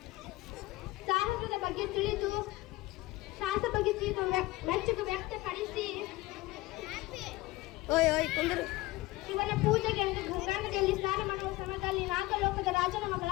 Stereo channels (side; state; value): right; quieter; 19.3 dB